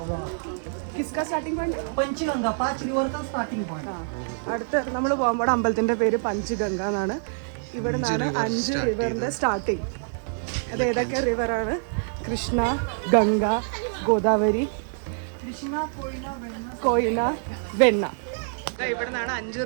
കിസ്ക സ്റ്റാർട്ടിംഗ് പോയിന്റ് पंचगंगा 5 रिवर का स्टार्टिंग पॉइंट. അടുത്ത് നമ്മൾ പോകുമ്പോൾ അമ്പലത്തിന്റെ പേര് പഞ്ചഗംഗ എന്നാണ്. ഇവിടെ 5 റിവറിന്റെ സ്റ്റാർട്ടിങ്. അത് ഏതൊക്കെ റിവറാണ്? കൃഷ്ണ, ഗംഗ, ഗോദാവരി, कृष्णा कोयना वेन्ना കോയിന, വെണ്ണ. ഇവിടെ നിന്നാണ് 5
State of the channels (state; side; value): silent; left; digital silence